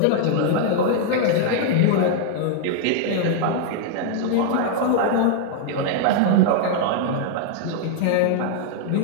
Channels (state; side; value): different; both; correlation 0.00